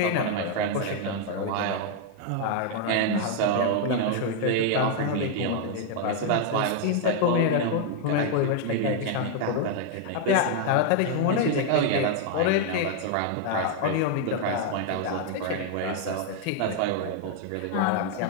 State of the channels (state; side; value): different; both; correlation 0.00